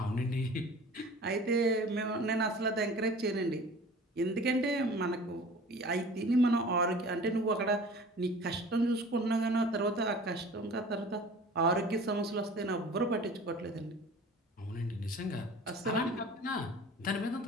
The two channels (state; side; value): normal; both; correlation 0.43